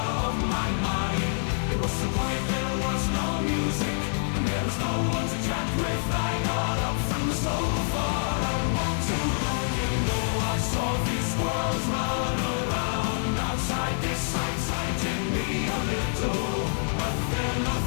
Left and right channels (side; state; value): right; silent; digital silence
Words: of my mind. It was so quiet, there was no music, and there was no one to chat with. I got up from the sofa and walked to the window. I saw these squirrels run around outside. This excited me a little, but then a